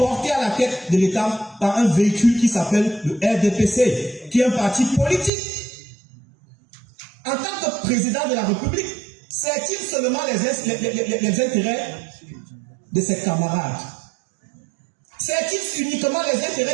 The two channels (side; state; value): left; drops out; at 5.3 s